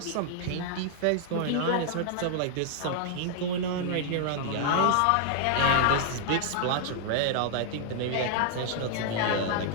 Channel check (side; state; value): both; different; correlation -0.01